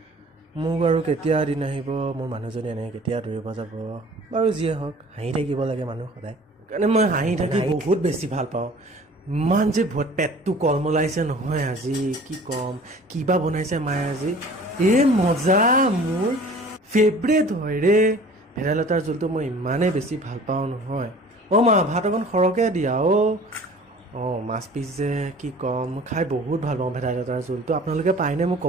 মোক আৰু কেতিয়া দিন আহিব, মোৰ মানুহজনী এনেকৈ কেতিয়া দৌৰিব যাব। বাৰু যিয়ে হওক, হাঁহি থাকিব লাগে মানুহ সদায়। সেইকাৰণে মই হাঁহি থাকি বহুত বেছি ভাল পাওঁ। ইমান যে পেটটো কলমলাইছে নহয় আজি, কি ক'ম। কিবা বনাইছে মায়ে আজি, মজা। মোৰ ফেভৰেট হয় ৰে ভেদাইলতাৰ জোলটো। মই ইমানেই বেছি ভাল পাওঁ নহয়। মা ভাত অকণ সৰহকৈ দিয়া মাছ পিচ যে কি ক'ম, মই খাই বহুত ভাল পাওঁ ভেদাইলতাৰ জোলটো। আপোনালোকে পায়নে মোক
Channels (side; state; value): both; normal; correlation 0.47